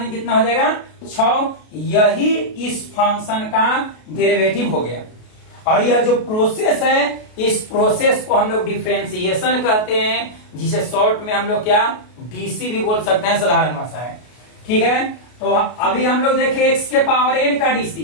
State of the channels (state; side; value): late; right; 33 ms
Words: कितना हो जाएगा, 6। यही इस फंक्शन का डेरिवेटिव हो गया। और यह जो प्रोसेस है, इस प्रोसेस को हम लोग डिफरेंशिएशन कहते हैं, जिसे शॉर्ट में हम लोग क्या, डीसी भी बोल सकते हैं, साधारण भाषा है। ठीक है, तो अभी हम लोग देखें x के पावर n का डीसी।